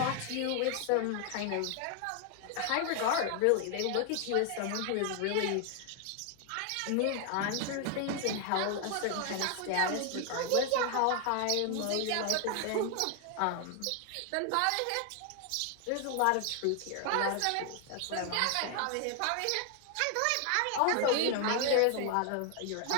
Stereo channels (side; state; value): both; different; correlation 0.00